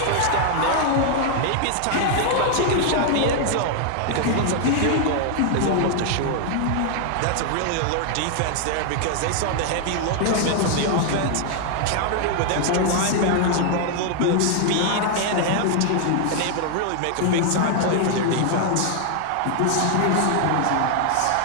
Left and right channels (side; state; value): both; different; correlation 0.00